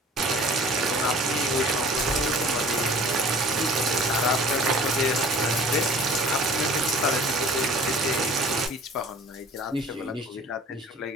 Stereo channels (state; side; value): normal; both; correlation 0.47